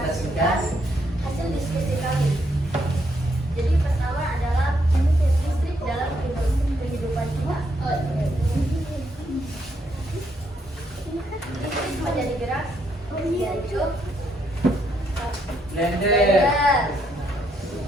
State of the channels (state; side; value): normal; both; correlation 0.75